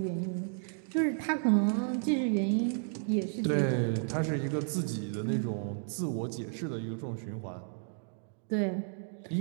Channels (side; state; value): left; silent; digital silence